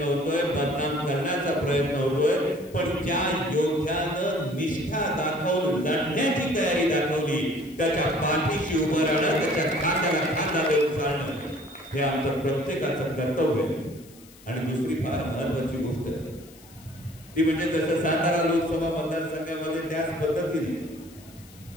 होतोय, बदनाम करण्याचा प्रयत्न होतोय. पण ज्या योद्ध्यानं निष्ठा दाखवून लढण्याची तयारी दाखवली त्याच्या पाठीशी उभं राहणं, त्याच्या खांद्याला खांदा देऊन चालणं हे आमचं प्रत्येकाचं कर्तव्य आहे. आणि दुसरी फार महत्वाची गोष्ट ती म्हणजे जसं सातारा लोकसभा मतदारसंघामध्ये त्याच पद्धतीने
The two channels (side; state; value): left; noise; hiss, 23 dB below the sound